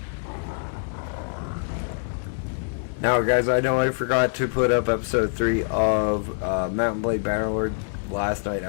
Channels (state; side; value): silent; right; digital silence